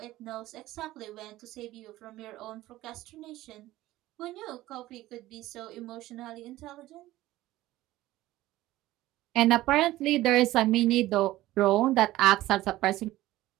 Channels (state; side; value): quieter; left; 16.3 dB